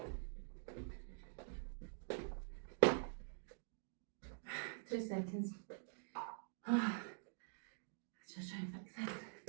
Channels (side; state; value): left; silent; digital silence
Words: 2 seconds. Just try and fix this.